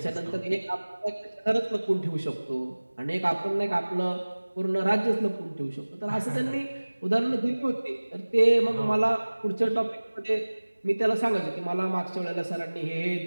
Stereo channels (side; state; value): both; inverted; correlation -1.00